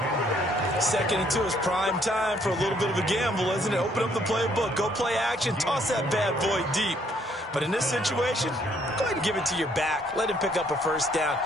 Second and 2 is prime time for a little bit of a gamble, isn't it? Open up the playbook, go play action, toss that bad boy deep. But in this situation, go ahead and give it to your back. Let him pick up a first down,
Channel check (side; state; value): both; normal; correlation 0.67